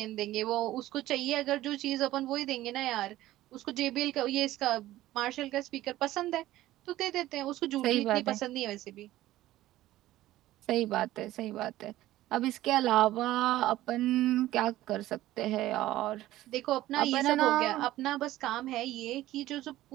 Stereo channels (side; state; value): left; quieter; 15.4 dB